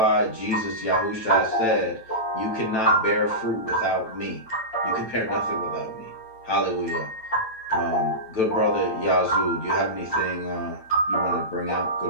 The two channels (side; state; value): right; late; 9.1 ms